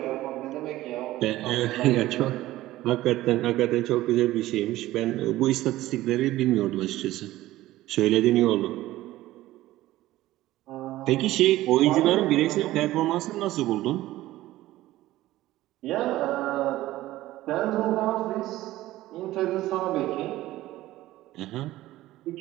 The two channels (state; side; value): quieter; left; 16.1 dB